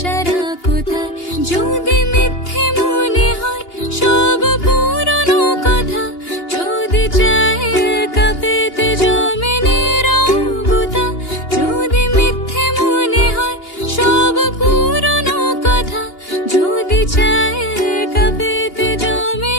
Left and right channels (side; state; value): right; late; 2.8 ms